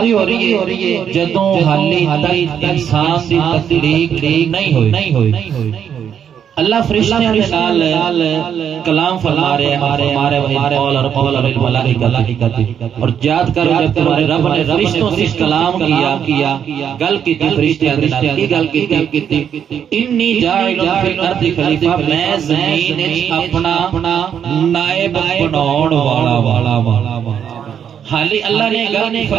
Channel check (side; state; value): left; quieter; 8.4 dB